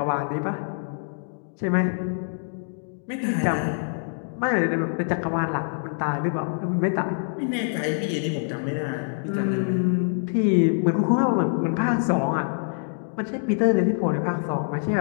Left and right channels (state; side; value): silent; right; digital silence